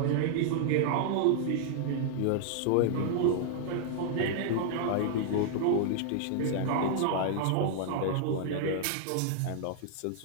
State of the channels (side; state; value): both; different; correlation -0.01